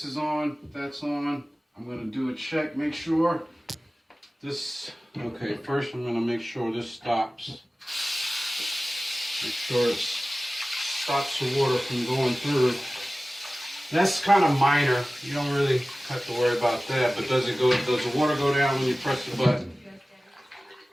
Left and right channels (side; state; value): both; normal; correlation 0.97